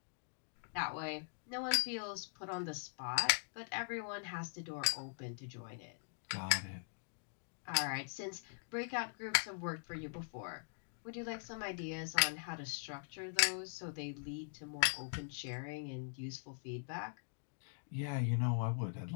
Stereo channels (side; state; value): right; silent; digital silence